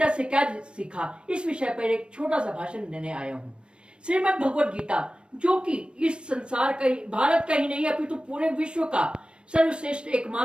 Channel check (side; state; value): left; late; 0.057 ms